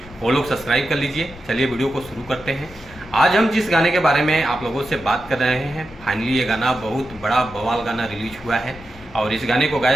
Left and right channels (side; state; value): left; noise; rumble, 19 dB below the sound